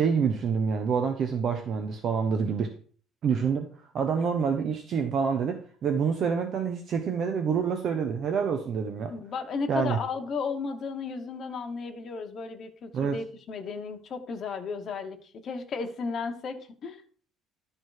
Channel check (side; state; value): left; quieter; 4.1 dB